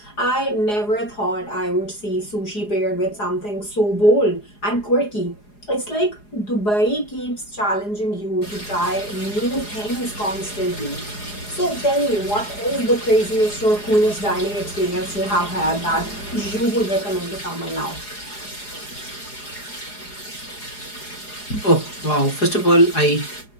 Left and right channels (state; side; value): late; right; 4.8 ms